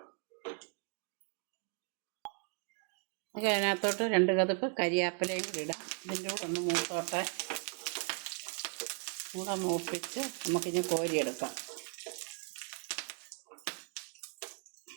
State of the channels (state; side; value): quieter; left; 37.9 dB